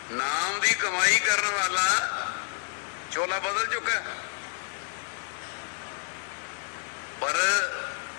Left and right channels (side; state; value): right; silent; digital silence